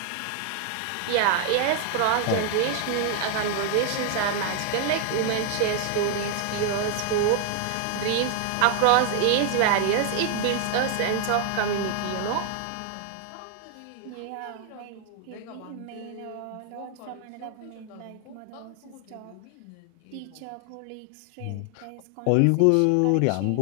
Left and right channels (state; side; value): different; both; correlation 0.00